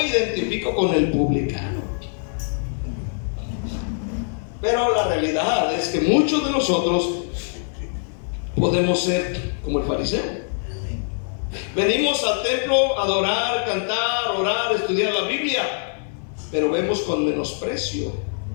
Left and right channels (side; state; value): right; silent; 60 dB below the other